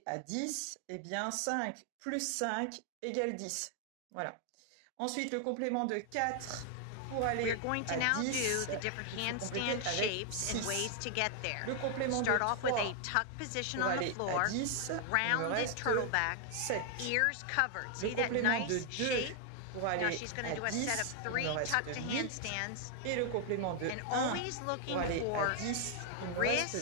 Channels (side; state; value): both; different; correlation 0.00